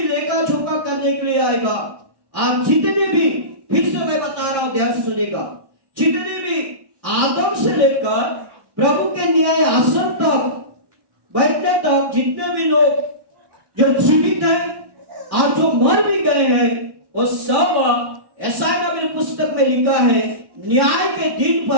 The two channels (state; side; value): late; left; 1.1 ms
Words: लेखा जोखा करने के लिए आएगा। और जितने भी, फिर से मैं बता रहा हूं, ध्यान सुनेगा, जितने भी आदम से लेकर प्रभु के न्याय आसन तक बैठने तक जितने भी लोग जो जीवित हैं और जो मर भी गए हैं, वो सब, ऐसा मेरे पुस्तक में लिखा है, न्याय के दिन